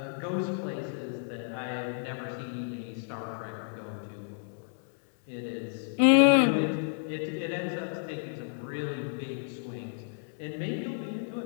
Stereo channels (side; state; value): right; silent; 56 dB below the other